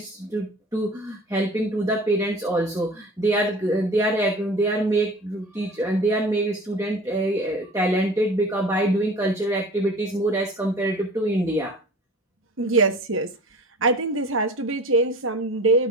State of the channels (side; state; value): both; normal; correlation 0.41